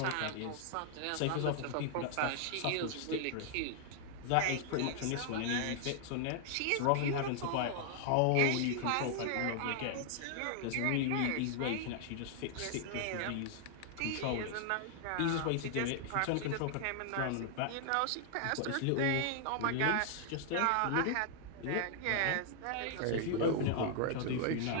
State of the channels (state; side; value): different; both; correlation 0.00